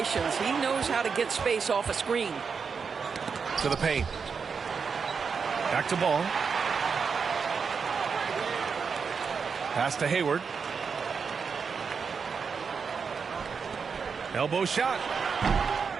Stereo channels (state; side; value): quieter; left; 5.7 dB